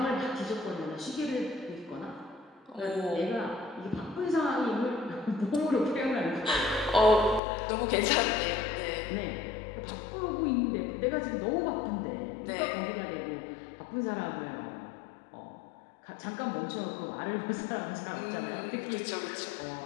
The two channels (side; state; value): right; drops out; at 7.4 s